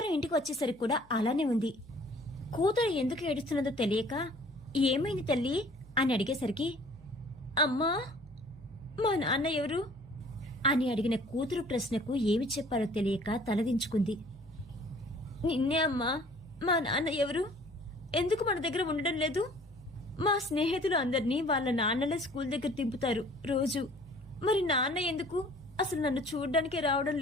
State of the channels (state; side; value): noise; left; hum, 28 dB below the sound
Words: ఇంటికి వచ్చేసరికి కూడా అలానే ఉంది. కూతురు ఎందుకు ఏడుస్తున్నదో తెలియక, ఏమైంది తల్లి అని అడిగేసరికి, అమ్మా మా నాన్న ఎవరు అని అడిగిన కూతురు ప్రశ్నకు ఏమి చెప్పాలో తెలియక తలదించుకుంది. నిన్నే అమ్మా, మా నాన్న ఎవరు? ఎందుకు మన దగ్గర ఉండడం లేదు? మా స్నేహితులు అందరినీ వాళ్ళ నాన్నలే స్కూల్ దగ్గర దింపుతారు రోజు. మరి నాన్న ఎందుకు అసలు నన్ను చూడ్డానికే రావడం